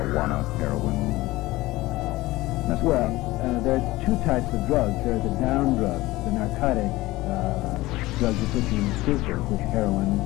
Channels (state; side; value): quieter; right; 18.8 dB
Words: heroin? Well, there's two types of drugs. There are the down drugs, the narcotic drugs that put you in stupor, which heroin,